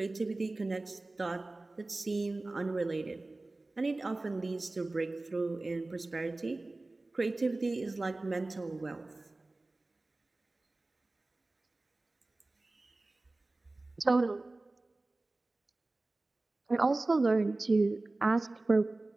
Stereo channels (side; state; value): left; quieter; 3.0 dB